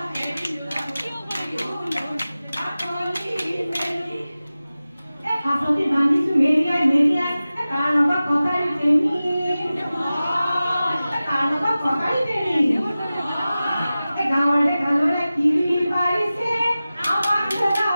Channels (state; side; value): inverted; both; correlation -0.96